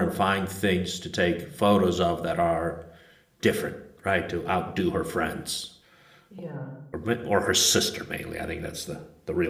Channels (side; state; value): both; identical; correlation 1.00